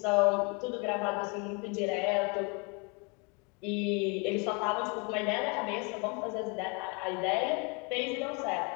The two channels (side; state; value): right; quieter; 32.3 dB